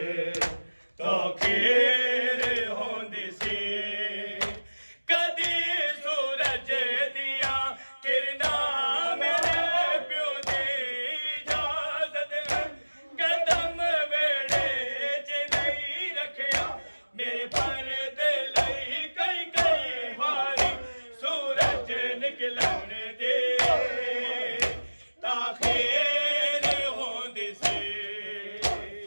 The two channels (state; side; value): inverted; both; correlation -1.00